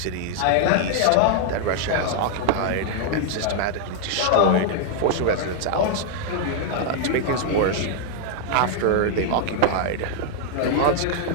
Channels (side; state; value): both; different; correlation 0.00